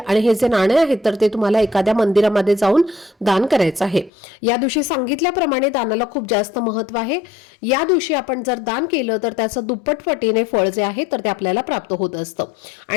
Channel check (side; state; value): right; drops out; at 4.1 s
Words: आणि हे जे नाणे आहेत तर ते तुम्हाला एखाद्या मंदिरामध्ये जाऊन दान करायचं आहे. या दिवशी सांगितल्याप्रमाणे दानाला खूप जास्त महत्व आहे. या दिवशी आपण जर दान केलं तर त्याचं दुप्पट पटीने फळ जे आहे तर ते आपल्याला प्राप्त होत असतं